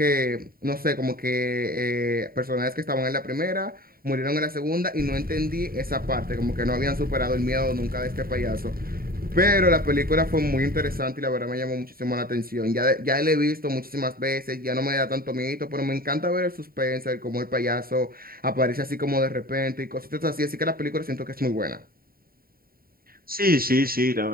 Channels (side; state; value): left; late; 0.43 ms